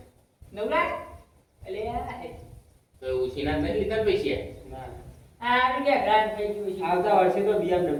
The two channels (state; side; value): identical; both; correlation 1.00